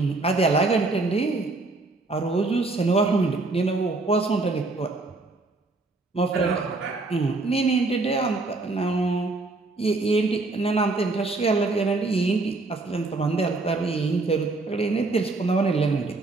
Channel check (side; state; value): left; quieter; 3.4 dB